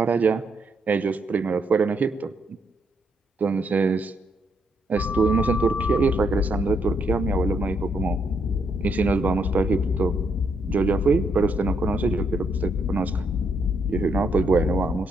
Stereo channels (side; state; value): both; normal; correlation 0.76